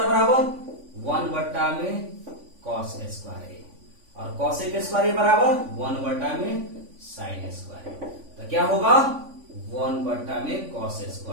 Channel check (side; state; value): left; late; 3.5 ms